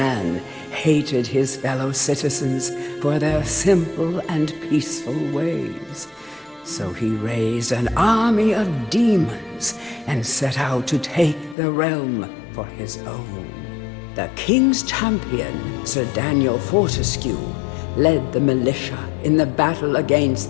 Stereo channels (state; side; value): drops out; right; at 11.6 s